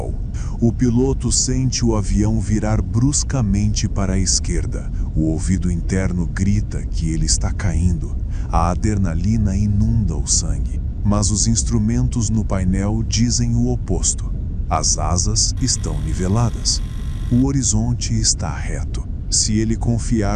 O piloto sente o avião virar bruscamente para a esquerda. O ouvido interno grita que ele está caindo. A adrenalina inunda o sangue. Mas os instrumentos no painel dizem o oposto. As asas estão niveladas. O horizonte está reto. Se ele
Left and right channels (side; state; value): both; identical; correlation 1.00